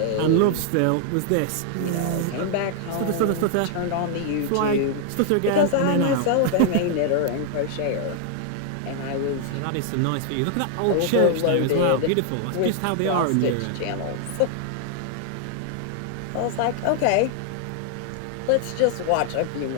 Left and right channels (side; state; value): both; different; correlation 0.00